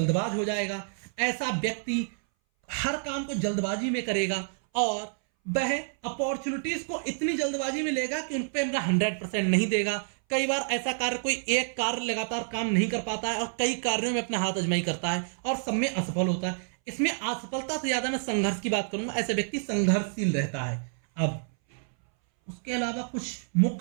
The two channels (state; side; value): silent; left; 59 dB below the other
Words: हो जाएगा। ऐसा व्यक्ति हर काम को जल्दबाजी में करेगा और वह अपॉर्चुनिटीज को इतनी जल्दबाजी में लेगा कि उन पर अपना 100% नहीं देगा। कई बार ऐसा कार्य, कोई एक कार्य लगातार काम नहीं कर पाता है और कई कार्यों में अपना हाथ आजमाई करता है और सब में असफल होता है। इसमें असफलता से ज्यादा मैं संघर्ष की बात करूंगा, ऐसे व्यक्ति संघर्षशील रहता है। अब उसके अलावा कुछ